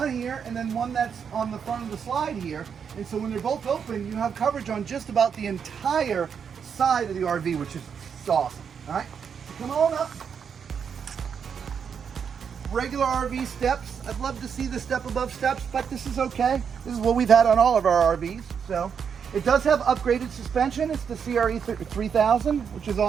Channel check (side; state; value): left; quieter; 7.0 dB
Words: here and then one that's on the front of the slide here. And so when they're both open, you have coverage on just about the entire side of the RV, which is awesome. All right, so come on up. Regular RV steps. I'd love to see the step above steps, but this is okay. This is what we've had on all of our RVs. So it does have upgraded suspension. It's the CRE 3000, which is